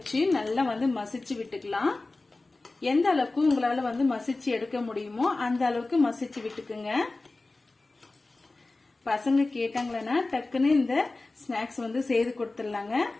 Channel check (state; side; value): quieter; right; 3.2 dB